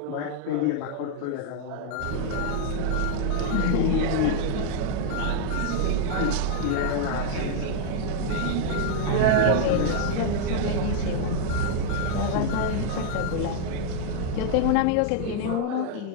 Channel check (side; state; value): both; different; correlation 0.00